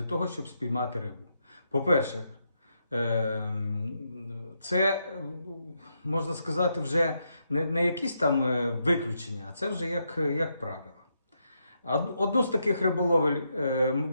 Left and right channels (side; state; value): both; inverted; correlation -0.80